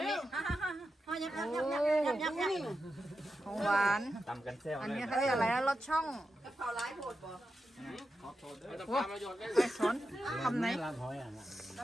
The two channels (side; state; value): both; normal; correlation 0.89